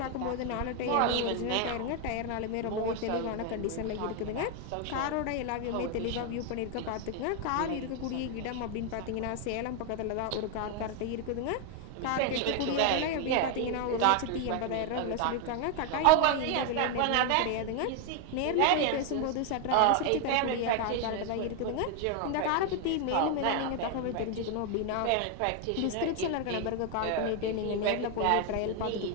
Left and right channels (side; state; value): both; different; correlation 0.01